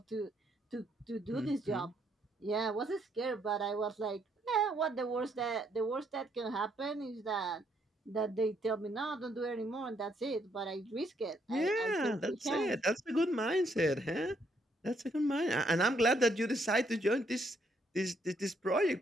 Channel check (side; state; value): both; normal; correlation 0.72